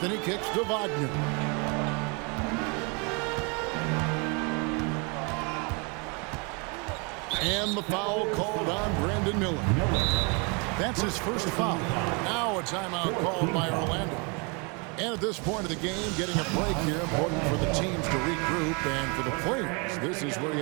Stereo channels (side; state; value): left; quieter; 32.1 dB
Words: kicks to Wagner. And the foul called on Brandon Miller. That's his first foul. Now a timeout called by Orlando. And at this point of the game, getting a break here, important for the teams to regroup, and for the players, this is where you